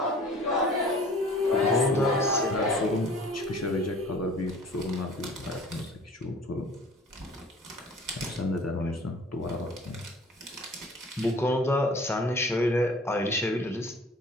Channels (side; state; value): both; normal; correlation 0.48